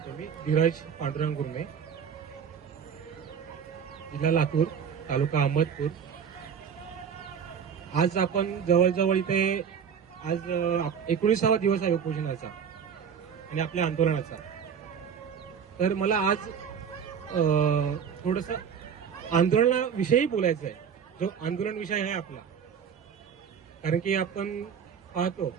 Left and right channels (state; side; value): quieter; left; 7.4 dB